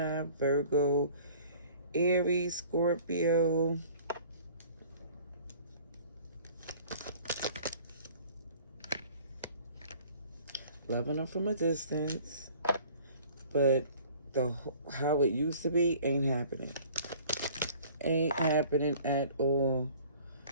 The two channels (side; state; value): both; inverted; correlation -0.51